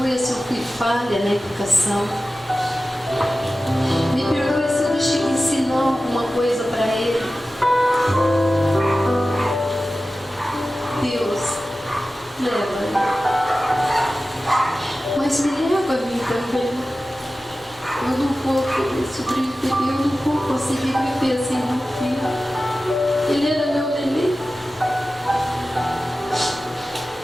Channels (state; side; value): normal; both; correlation 0.95